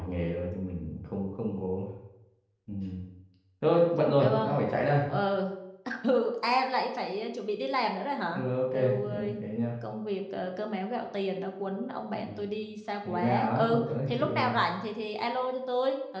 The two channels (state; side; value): identical; both; correlation 1.00